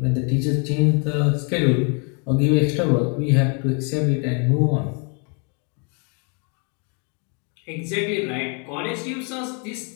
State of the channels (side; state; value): right; quieter; 37.1 dB